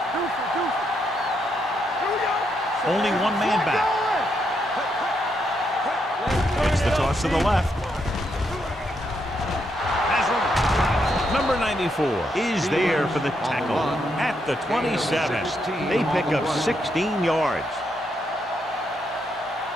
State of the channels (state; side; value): normal; both; correlation 0.79